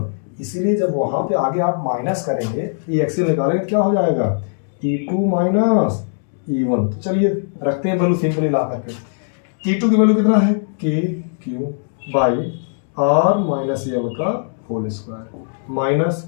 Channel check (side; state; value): right; silent; digital silence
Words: इसीलिए जब वहां पे आगे आप माइनस करेंगे, ये एक्सियल निकालेंगे, क्या हो जाएगा? E2 minus E1। तो चलिए रखते हैं वैल्यू सिंपली ला करके। E2 की वैल्यू कितना है? KQ by R minus L का होल स्क्वायर, माइनस